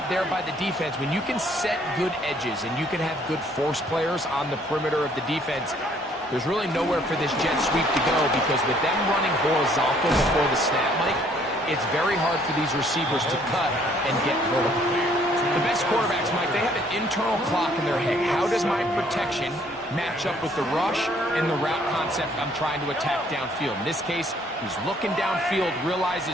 there by the defense. When you can set good edges and you can have good force players on the perimeter of the defense, there's really nowhere for this jet sweep to go, because with them running horizontal before the snap, Mike, it's very hard for these receivers to cut and get vertical. The best quarterbacks, Mike, they have an internal clock in their head. How does my protection match up with the rush and the route concept I'm trying to attack downfield? In this case, he's looking downfield,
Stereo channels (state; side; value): normal; both; correlation 0.63